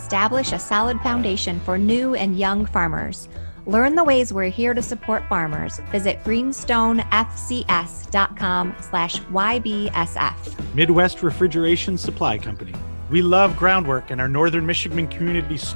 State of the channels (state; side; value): inverted; both; correlation -1.00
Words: a solid foundation for new and young farmers. Learn the ways we're here to support farmers. Visit greenstonefcs.com/YBSF. Midwest Refrigeration Supply Company. We love Groundwork and our Northern Michigan community